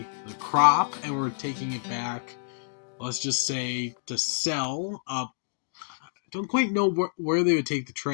the crop and we're taking it back, let's just say, to sell up. I don't quite know where they would take the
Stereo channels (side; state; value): right; silent; digital silence